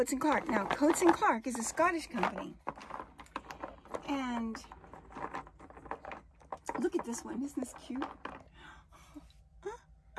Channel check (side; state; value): both; identical; correlation 1.00